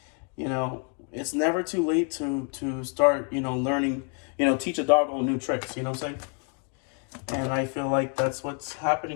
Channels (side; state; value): right; quieter; 39.6 dB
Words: It's never too late to start, learning, teach a dog all new tricks, you know what I'm saying? And I feel like that's what's